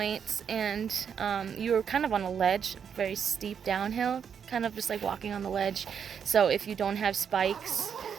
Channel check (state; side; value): quieter; left; 7.4 dB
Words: And you were kind of on a ledge, very steep downhill, kind of just like walking on the ledge. So if you don't have spikes,